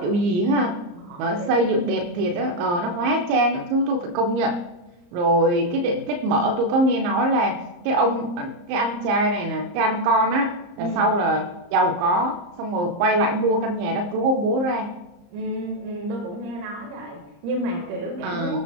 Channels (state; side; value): late; left; 34 ms